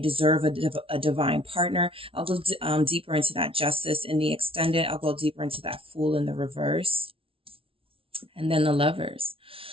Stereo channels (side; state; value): left; late; 0.26 ms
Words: a divine partner. I'll go deeper into that justice in the extended. I'll go deeper into that Fool in the reverse. And then the Lovers.